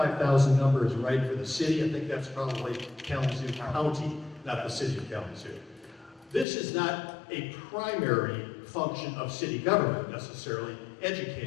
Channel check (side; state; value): right; drops out; at 6.5 s